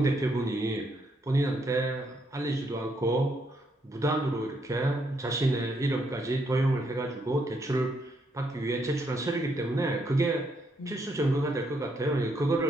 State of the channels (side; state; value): both; normal; correlation 0.75